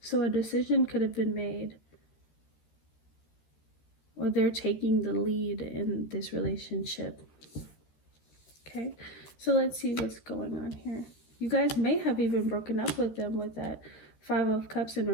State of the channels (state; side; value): late; right; 13 ms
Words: So a decision could have been made, or they're taking the lead in this relationship. Okay, so let's see what's going on here. You guys may have even broken up with them with that 5 of Cups in